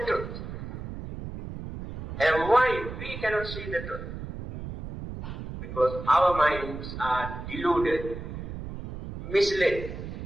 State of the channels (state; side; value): noise; right; rumble, 9 dB below the sound